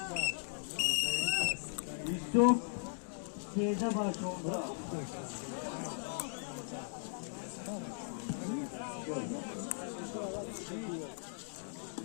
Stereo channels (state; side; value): silent; right; digital silence